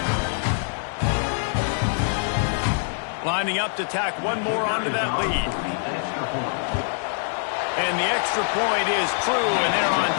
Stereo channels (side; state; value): right; silent; digital silence